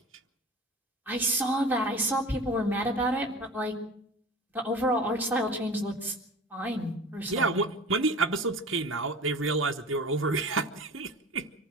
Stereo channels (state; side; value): normal; both; correlation 0.38